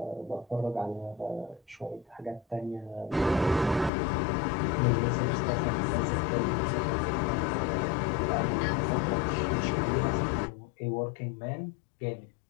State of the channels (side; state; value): right; drops out; at 3.9 s